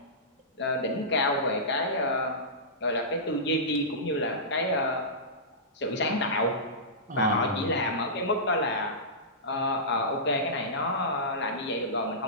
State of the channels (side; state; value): both; normal; correlation -0.18